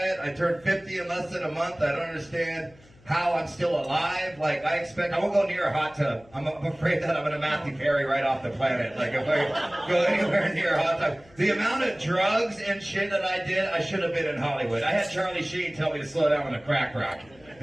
I turned 50 in less than a month. I don't understand how I'm still alive. Like, I won't go near a hot tub. I'm afraid that I'm gonna Matthew Perry right off the planet. Like, if I go anywhere near a hot tub. The amount of drugs and shit that I did, I should have been in Hollywood. I had Charlie Sheen tell me to slow down on the crack rock.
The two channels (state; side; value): noise; left; hum, 27 dB below the sound